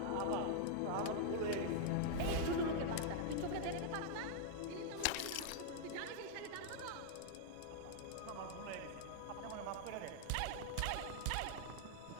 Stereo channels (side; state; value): both; different; correlation -0.01